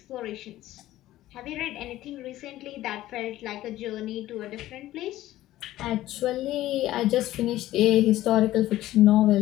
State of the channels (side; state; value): right; quieter; 15.0 dB